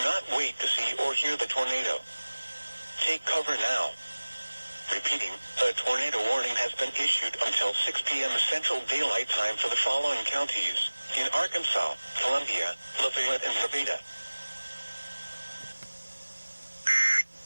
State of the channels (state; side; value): inverted; both; correlation -1.00